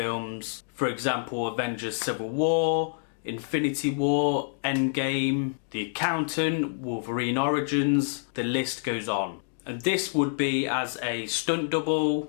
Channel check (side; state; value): right; silent; digital silence